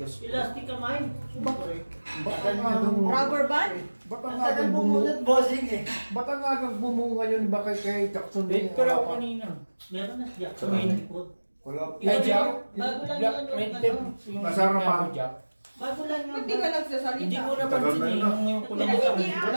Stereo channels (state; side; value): inverted; both; correlation -1.00